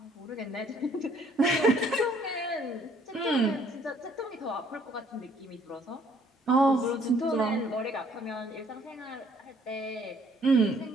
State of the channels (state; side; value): normal; both; correlation 0.62